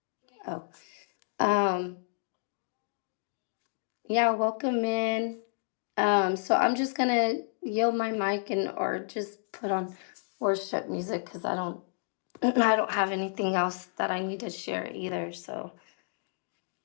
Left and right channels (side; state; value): right; silent; digital silence